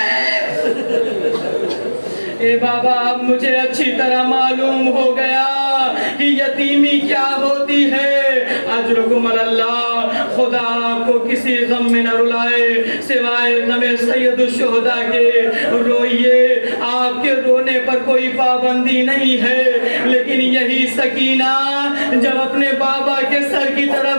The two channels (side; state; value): both; inverted; correlation -1.00